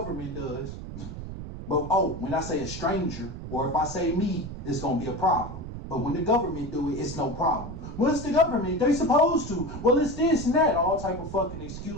does. But when I say a stranger, or if I say me, it's going to be a problem. But when the government do it, it's no problem. Well, it's the government. They supposed to. Well, it's this and that. All type of fucking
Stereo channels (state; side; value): noise; right; rumble, 9 dB below the sound